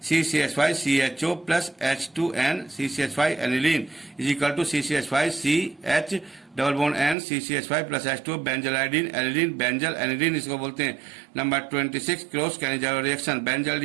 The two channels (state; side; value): drops out; left; at 7.2 s